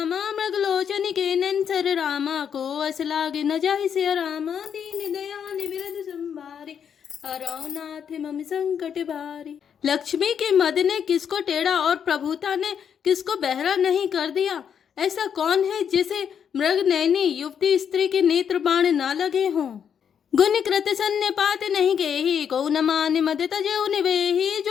मृगलोचन के नंसर रामा को असलाग न जाहि से रामा दीन दयाल बिरद संभारे हरौनाथ मम संकट भारी। लक्ष्मी के मद ने किसको टेढ़ा और प्रभुता ने किसको बहरा नहीं कर दिया। ऐसा कौन है जिसे मृग नैनी युवती स्त्री के नेत्र बाण ना लगे हों। गुण कृत सन्य पात नहीं केही को न मान मद तजेउ निवेही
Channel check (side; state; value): right; quieter; 7.9 dB